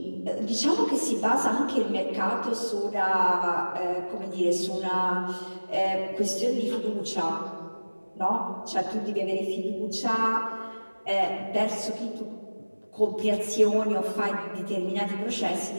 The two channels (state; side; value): inverted; both; correlation -1.00